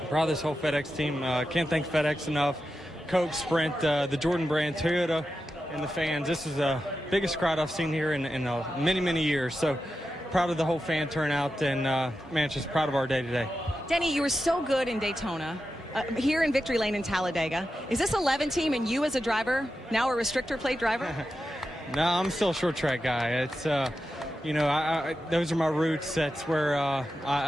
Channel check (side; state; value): both; normal; correlation 0.90